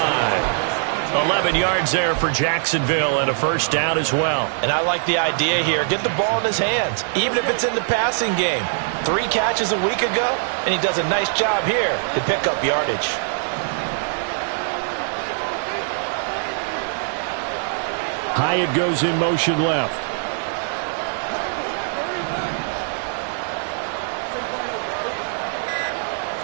11 yards there for Jacksonville and a first down as well. And I like the idea here. Get the ball in his hands, even if it's in the passing game. 3 catches a week ago, and he does a nice job here to pick up yardage. Hyatt goes in motion left.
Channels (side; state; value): left; silent; digital silence